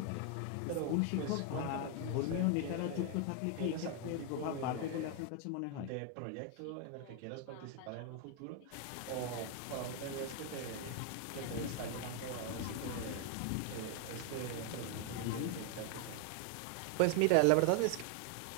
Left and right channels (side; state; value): both; different; correlation 0.01